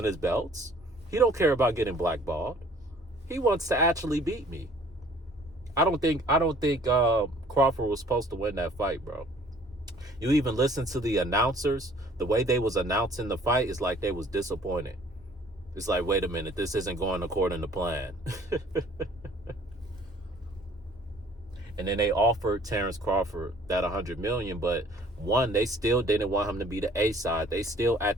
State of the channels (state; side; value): normal; both; correlation 0.55